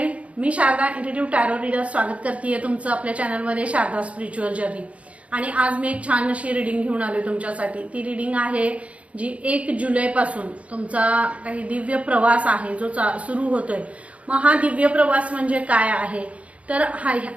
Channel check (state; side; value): late; left; 0.064 ms